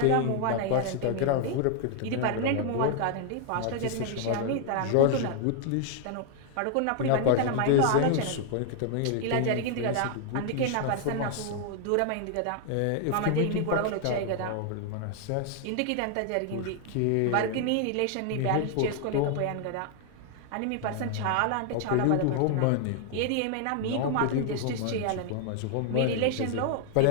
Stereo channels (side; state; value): both; different; correlation 0.00